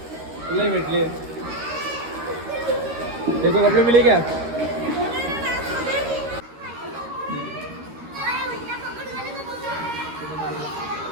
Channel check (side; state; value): left; late; 13 ms